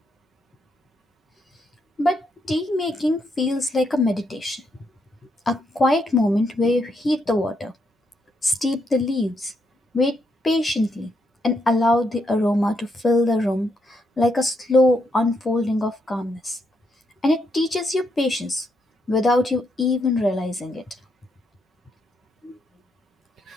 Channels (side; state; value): both; normal; correlation 0.78